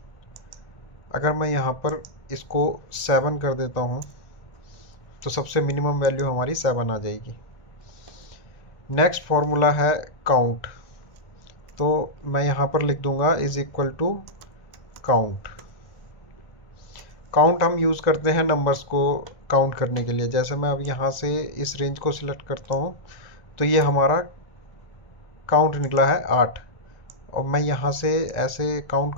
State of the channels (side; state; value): right; late; 1.5 ms